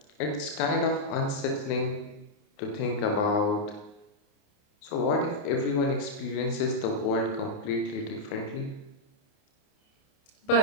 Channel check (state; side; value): late; right; 29 ms